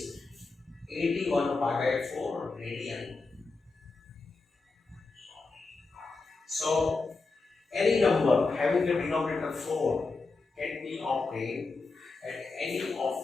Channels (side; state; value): right; quieter; 3.9 dB